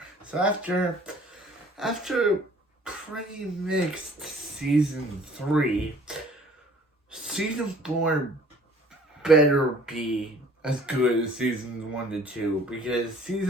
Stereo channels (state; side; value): normal; both; correlation 0.54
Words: So after pretty mixed season 3, season 4 better be as good as seasons 1 to 2, because